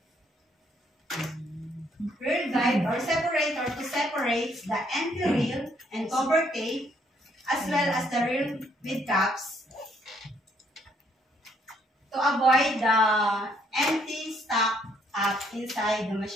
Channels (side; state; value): both; normal; correlation 0.68